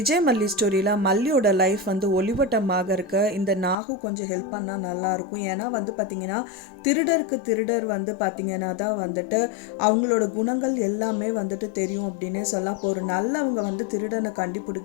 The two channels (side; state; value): right; drops out; at 3.8 s